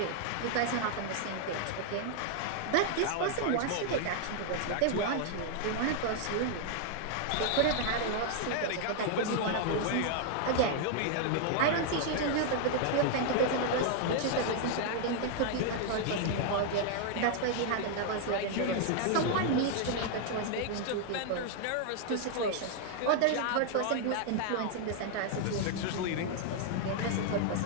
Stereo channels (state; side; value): different; both; correlation 0.00